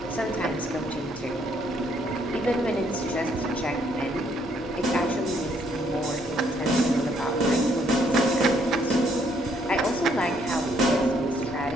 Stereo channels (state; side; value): normal; both; correlation 0.69